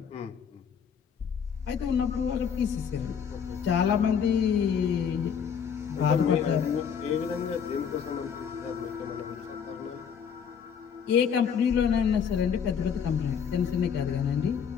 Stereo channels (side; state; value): right; quieter; 7.3 dB